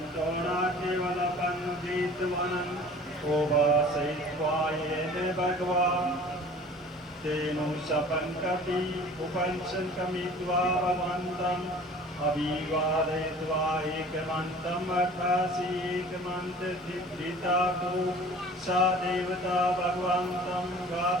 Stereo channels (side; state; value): both; normal; correlation 0.46